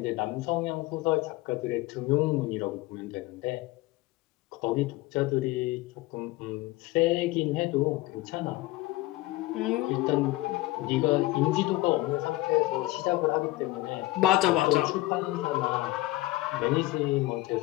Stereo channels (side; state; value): right; quieter; 18.9 dB